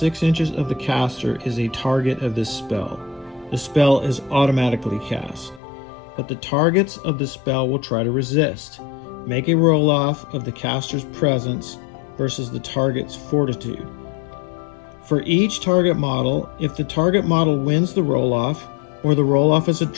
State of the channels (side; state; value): right; drops out; at 5.6 s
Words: inches of the caster is a target of this spell. The spell is automatically cast, but the targets of the spell will try to resist. Make a roll-off of the caster's presence versus the target's fortitude. For each target model, if the target model wins the roll-off, or the roll-off is a